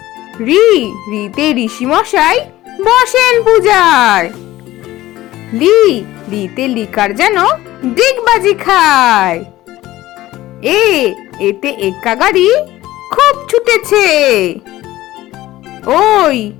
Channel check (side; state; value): right; quieter; 16.1 dB